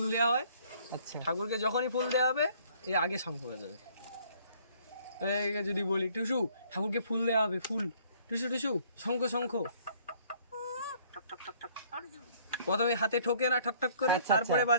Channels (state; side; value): inverted; both; correlation -0.59